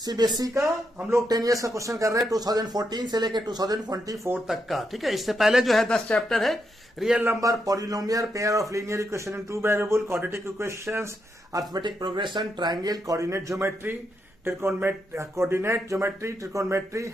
CBSE का। हम लोग 10 इयर्स का क्वेश्चन कर रहे हैं 2014 से लेकर 2024 तक का। ठीक है, इससे पहले जो है 10 चैप्टर है। Real number, polynomial, pair of linear equation in two variable, quadratic equations, arithmetic progression, triangle, coordinate geometry, coordinate geometry, trigonometry,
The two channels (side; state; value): both; normal; correlation 0.82